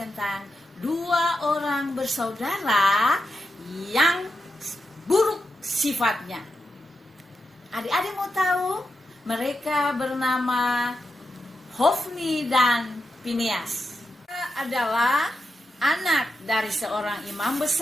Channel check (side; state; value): both; normal; correlation 0.87